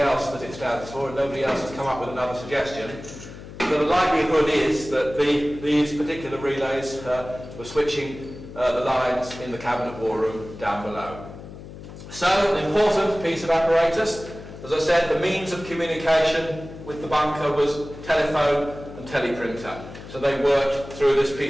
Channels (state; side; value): noise; left; hum, 14 dB below the sound